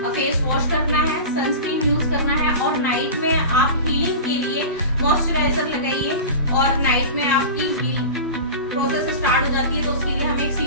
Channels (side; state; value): both; inverted; correlation -0.30